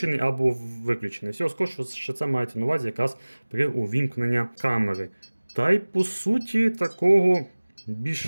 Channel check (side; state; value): both; inverted; correlation -1.00